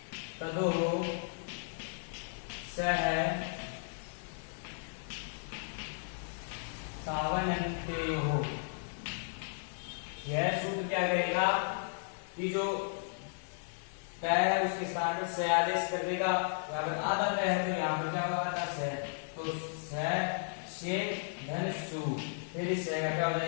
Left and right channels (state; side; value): silent; right; 55 dB below the other